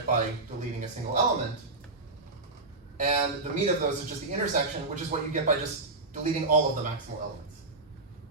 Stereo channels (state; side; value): quieter; left; 3.3 dB